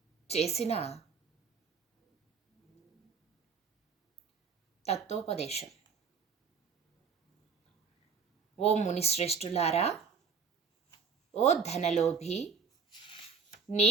చేసిన తత్వోపదేశం. ఓ మునిశ్రేష్ఠులారా, ఓ ధనలోభి,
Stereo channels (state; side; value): quieter; left; 5.6 dB